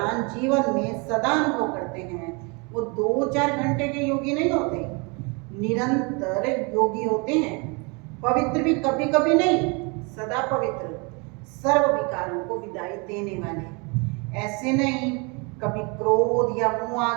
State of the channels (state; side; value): quieter; left; 31.0 dB